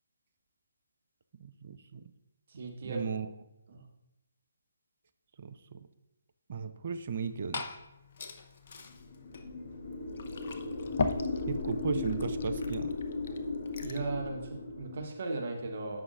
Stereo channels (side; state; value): both; inverted; correlation -0.73